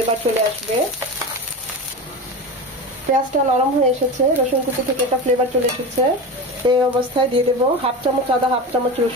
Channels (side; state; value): both; normal; correlation 0.25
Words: চলে আসবে। পেঁয়াজটা নরম হয়ে এসেছে, রসুন কুচি থেকে একটা ফ্লেভার চলে এসেছে। এই অবস্থায় দিয়ে দেবো 1/2 চামচ আদা, 1/2 চামচ